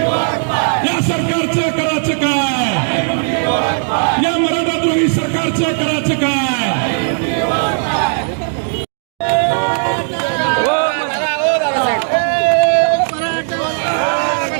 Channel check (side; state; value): left; silent; digital silence